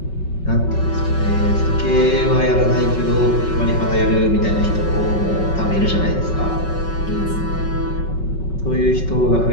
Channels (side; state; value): right; late; 5.4 ms